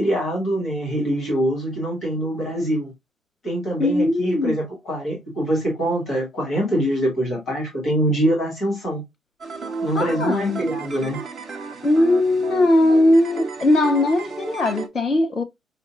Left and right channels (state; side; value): normal; both; correlation 0.78